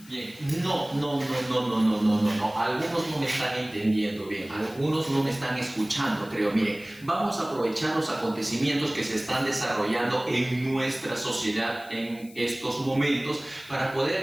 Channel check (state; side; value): noise; left; hiss, 22 dB below the sound